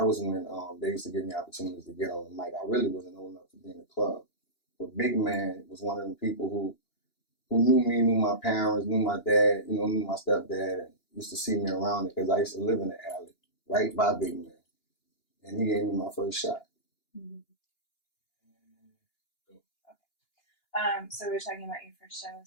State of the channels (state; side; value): late; right; 2.9 ms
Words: was when they used to give me opportunities to get on the mic. I really wasn't old enough to be in the club. But Big Man was one of them people who knew me, knew my parents, knew my dad, knew my stepdad, and used to see me around it because I used to live in the alley right by Big Man. And he gave me my first shot. Mm-hmm. So we were talking about your first